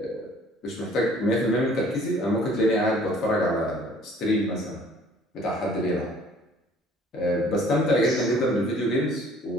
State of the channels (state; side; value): normal; both; correlation 0.55